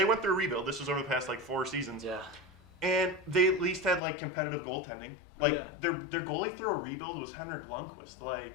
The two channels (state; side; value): drops out; right; at 4.0 s